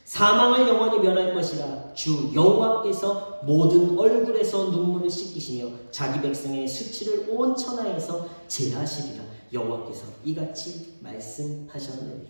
사망을 영원히 멸할 것이라 주 여호와께서 모든 얼굴에서 눈물을 씻기시며 자기 백성의 수치를 온 천하에서 제하시리라. 여호와께서 이같이 말씀하셨느니라.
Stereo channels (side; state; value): both; inverted; correlation -1.00